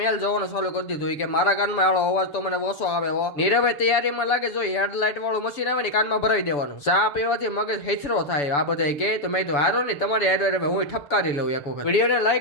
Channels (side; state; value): right; late; 7.0 ms